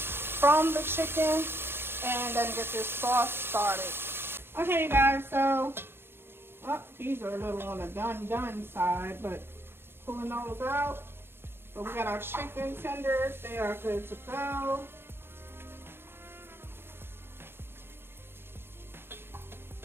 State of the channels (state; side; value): late; left; 0.11 ms